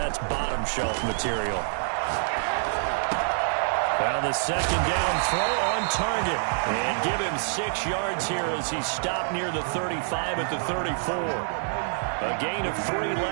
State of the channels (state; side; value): silent; left; digital silence